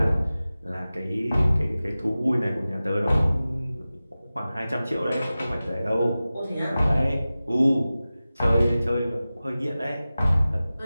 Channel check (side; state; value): both; inverted; correlation -0.96